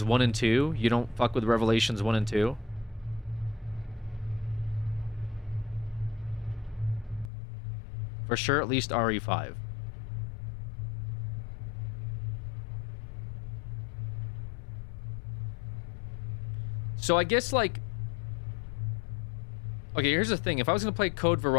1 and 2. You don't fuck with Revelations 1 and 2. For sure, at least RE5. So I guess, like... Okay, here's the thing. If I was going to play Code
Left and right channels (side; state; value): right; drops out; at 7.3 s